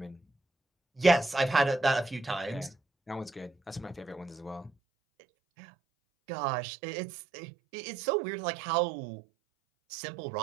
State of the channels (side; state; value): left; drops out; at 4.7 s